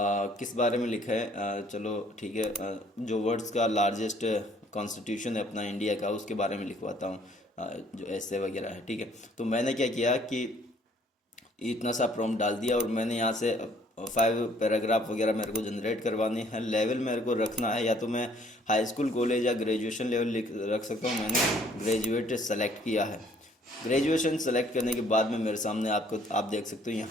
किस बारे में लिखा है, चलो ठीक है, जो वर्ड्स का लार्जेस्ट कॉन्स्टिट्यूशन है अपना इंडिया का, उसके बारे में लिखवाता हूँ, जो ऐसे वगैरह है। ठीक है, तो मैंने क्या किया कि इतना सा प्रॉम्प्ट डाल दिया, और मैंने यहाँ से 5 पैराग्राफ वगैरह मेरे को जनरेट करवाने हैं। लेवल मेरे को रखना है, या तो मैं हाई स्कूल कॉलेज या ग्रेजुएशन लेवल रख सकता हूँ। मैंने ग्रेजुएट सेलेक्ट किया है। ग्रेजुएशन सेलेक्ट करने के बाद में मेरे सामने आप देख सकते हो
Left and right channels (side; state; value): both; normal; correlation 0.61